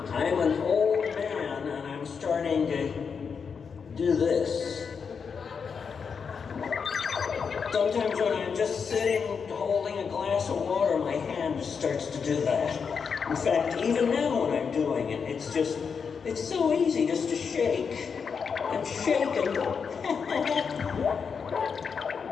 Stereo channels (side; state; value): right; quieter; 6.0 dB